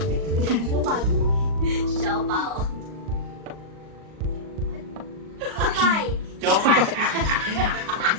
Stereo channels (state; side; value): late; left; 38 ms